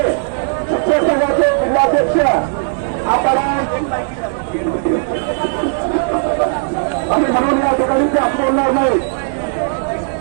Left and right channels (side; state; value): left; silent; digital silence